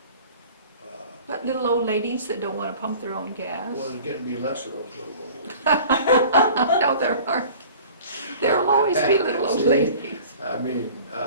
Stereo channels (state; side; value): inverted; both; correlation -0.45